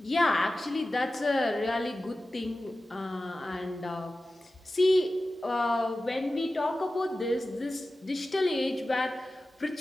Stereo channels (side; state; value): both; normal; correlation 0.95